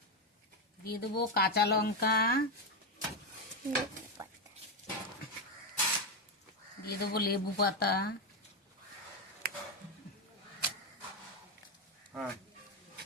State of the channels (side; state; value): both; normal; correlation 0.09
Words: দিয়ে দেবো কাঁচা লঙ্কা, দিয়ে দেবো লেবু পাতা, হ্যাঁ